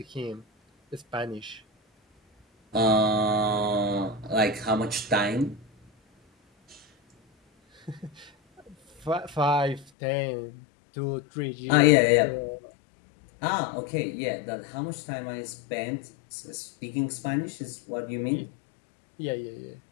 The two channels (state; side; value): drops out; right; at 9.9 s